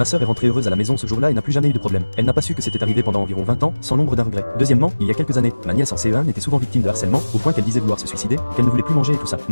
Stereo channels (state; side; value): inverted; both; correlation -1.00